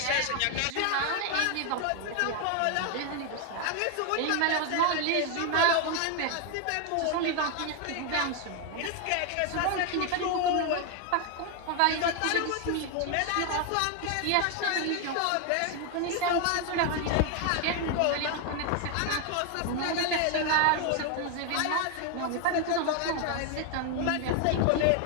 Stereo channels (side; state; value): both; different; correlation 0.01